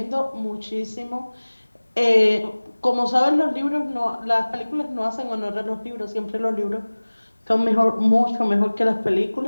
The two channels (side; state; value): both; inverted; correlation -1.00